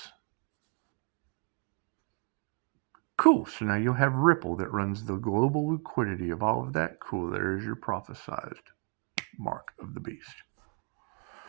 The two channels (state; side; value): quieter; left; 34.7 dB